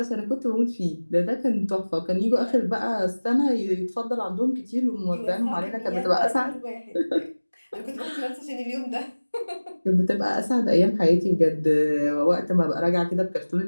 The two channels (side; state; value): both; inverted; correlation -1.00